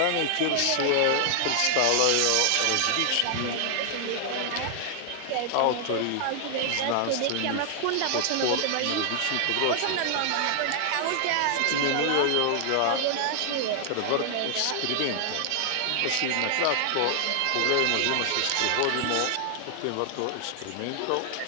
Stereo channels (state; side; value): different; both; correlation 0.00